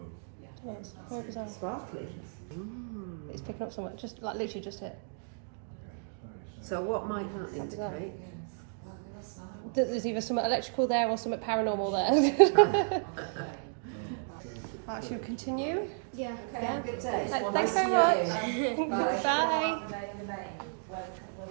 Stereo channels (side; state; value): left; silent; digital silence